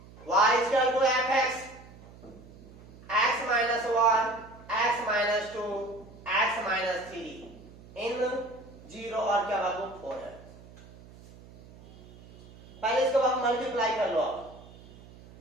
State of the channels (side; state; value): right; noise; hum, 21 dB below the sound